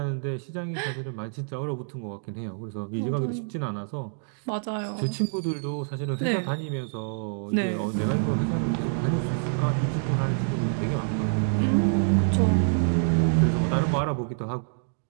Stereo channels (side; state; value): left; silent; digital silence